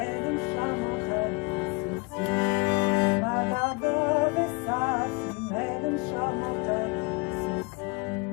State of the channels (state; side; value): quieter; right; 29.5 dB